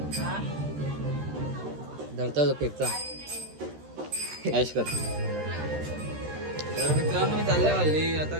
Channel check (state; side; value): late; left; 13 ms